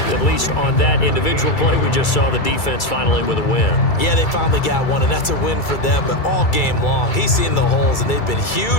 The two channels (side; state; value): right; late; 2.3 ms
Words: at least on that individual play, we just saw the defense finally with a win. Yeah, they finally got one, and that's a win for them, but all game long, he's seen the holes, and they've been